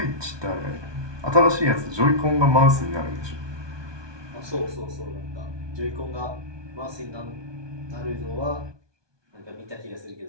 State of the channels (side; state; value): left; late; 1.2 ms